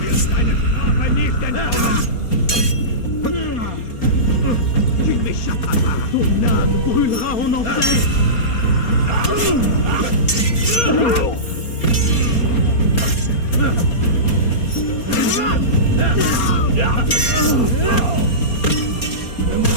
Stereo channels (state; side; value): late; right; 4.3 ms